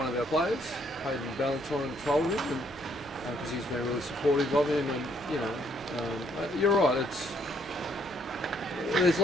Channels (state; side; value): normal; both; correlation 0.69